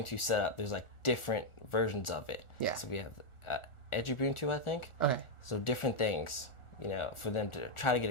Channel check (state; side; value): late; right; 1.4 ms